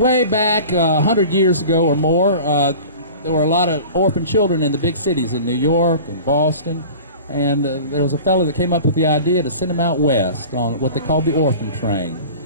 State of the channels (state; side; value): inverted; both; correlation -0.39